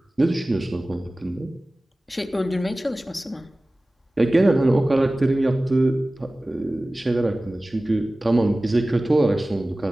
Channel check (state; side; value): normal; both; correlation 0.97